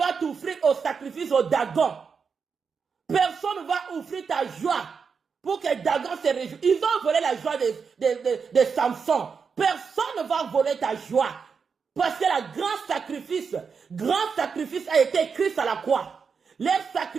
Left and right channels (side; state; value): left; quieter; 5.8 dB